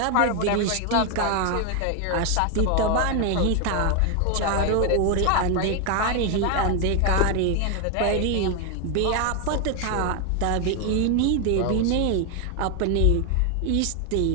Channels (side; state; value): both; different; correlation 0.01